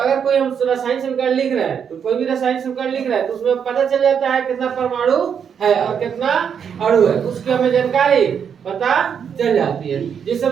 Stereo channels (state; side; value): quieter; left; 7.5 dB